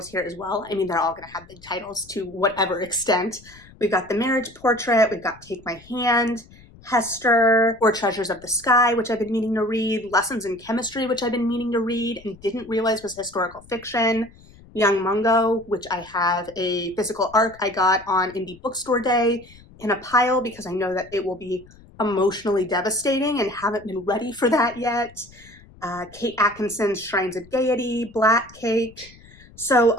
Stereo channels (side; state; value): left; noise; rumble, 24 dB below the sound